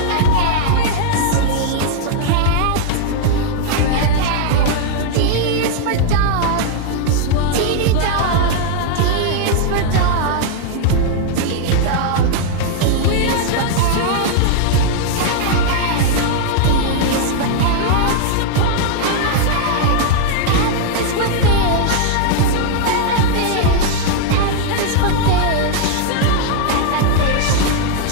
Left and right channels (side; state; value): both; different; correlation 0.00